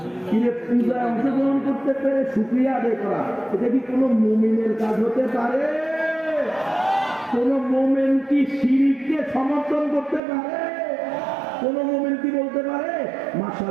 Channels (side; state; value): left; drops out; at 10.2 s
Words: পূজায় অংশগ্রহণ করতে পেরে শুকরিয়া আদায় করা, এটা কি কোনো মুমিনের কাজ হতে পারে? কোন মুমিন কি শিরককে সমর্থন করতে পারে? কোন মুমিন কি বলতে পারে